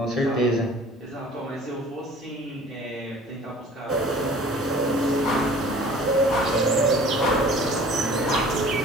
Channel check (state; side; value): normal; both; correlation 0.47